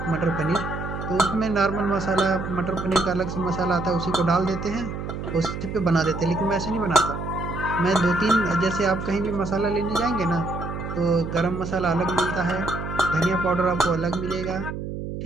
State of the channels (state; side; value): noise; right; hum, 6 dB below the sound